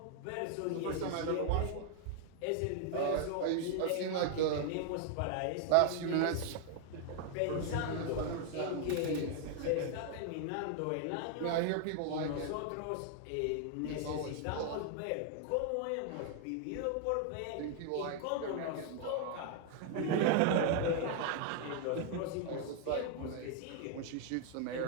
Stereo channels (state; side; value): different; both; correlation 0.00